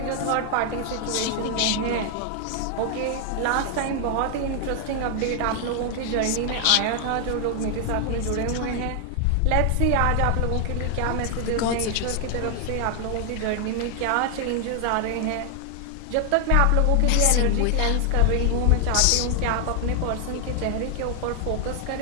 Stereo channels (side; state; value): both; different; correlation 0.00